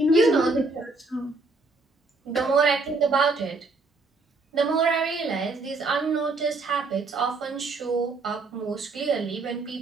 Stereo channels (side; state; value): left; quieter; 3.6 dB